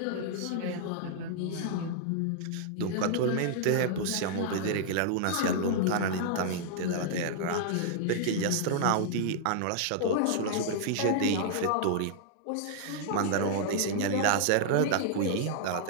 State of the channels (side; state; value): both; different; correlation -0.01